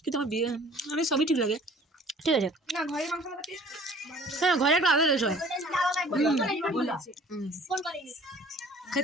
কিন্তু আমার বিয়ে আমি সবই ঠিক লাগে। ঠিক আছে। না ঘরে মাংস মাখাতে হ্যাঁ ঘরে একটা আলাদা টেস্ট হয়। ফোন করেনি।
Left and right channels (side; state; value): both; normal; correlation 0.51